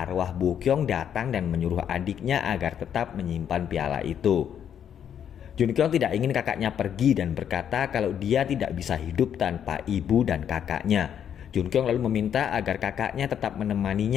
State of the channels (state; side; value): quieter; right; 9.0 dB